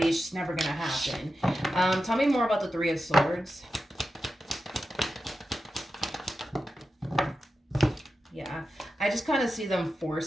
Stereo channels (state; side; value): normal; both; correlation 0.91